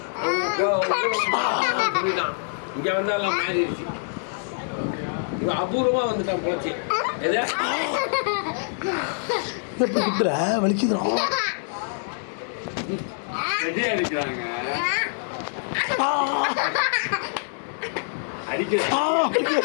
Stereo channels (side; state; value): right; silent; digital silence